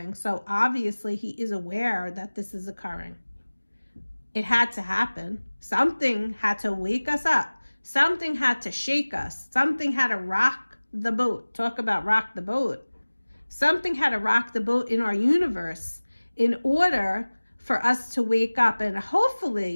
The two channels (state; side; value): inverted; both; correlation -1.00